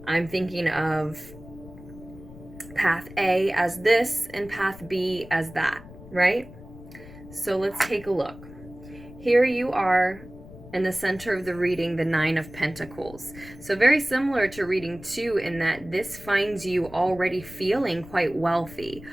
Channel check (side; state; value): left; noise; rumble, 17 dB below the sound